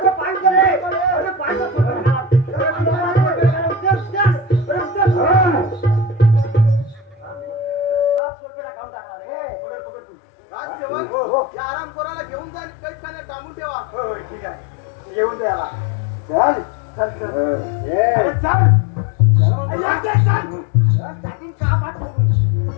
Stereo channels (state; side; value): drops out; right; at 8.2 s